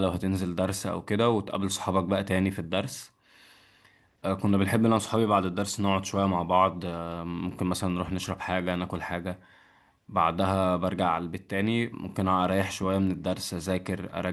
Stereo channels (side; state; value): both; identical; correlation 1.00